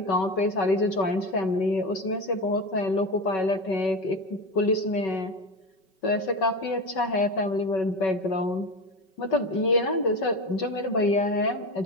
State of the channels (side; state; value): right; late; 5.3 ms